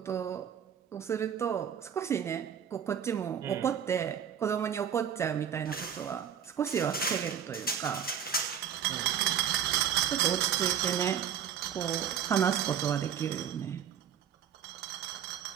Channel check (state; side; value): quieter; left; 8.8 dB